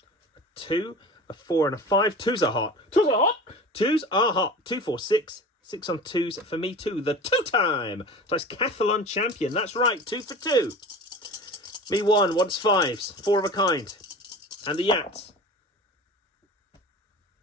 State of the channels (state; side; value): normal; both; correlation 0.36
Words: 2, a 4 and a 5. 2s are hot. 2s are hot. 2s are hot. 2, 4, 6. 6 on 2s for me 2. The 2-time Decathlon champion. That's right. 2 for 2. Me 1 wants 5s. 4 of a kind. And the Yahtzee